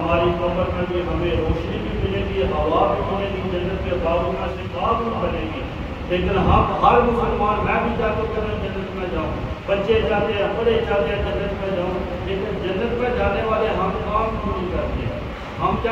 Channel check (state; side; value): identical; both; correlation 1.00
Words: قبر میں بھی ہمیں روشنی بھی ملے گی، ہوا بھی ملے گی، جنت کے باغوں میں سے باغ بھی بنے گی۔ لیکن ہم ہر مسلمان، میں بھی چاہتا ہوں کہ میں جنت میں جاؤں، بچے چاہتے ہیں، بڑے چاہتے ہیں جنت میں جاؤں، لیکن جنت میں جانے والے ہم کام کیوں نہیں کرتے؟ ہم